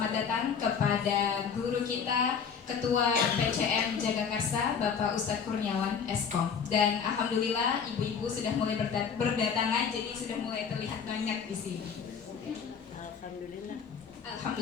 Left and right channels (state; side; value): quieter; right; 6.6 dB